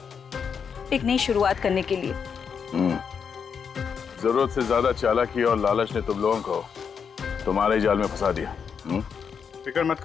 एक नई शुरुआत करने के लिए। जरूरत से ज्यादा चालाकी और लालच ने तुम लोगों को तुम्हारे ही जाल में फंसा दिया। फिक्र मत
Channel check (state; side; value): quieter; right; 6.6 dB